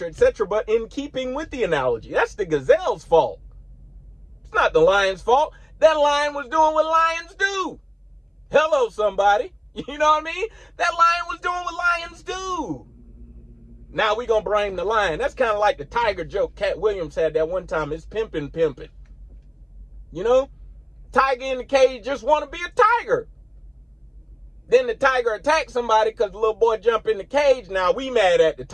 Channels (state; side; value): identical; both; correlation 1.00